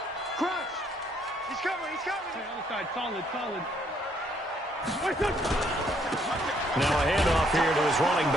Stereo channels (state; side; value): normal; both; correlation 0.68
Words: Crunch. He's coming. He's coming. Okay, other side. Solid. Solid. Now a handoff here to his running